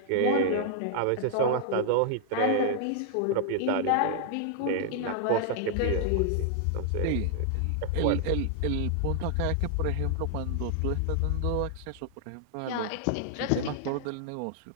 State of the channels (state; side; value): different; both; correlation -0.01